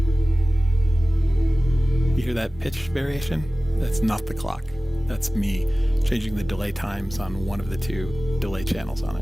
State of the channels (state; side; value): normal; both; correlation 0.97